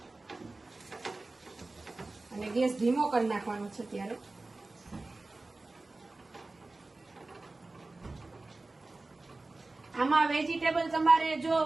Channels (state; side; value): quieter; left; 3.2 dB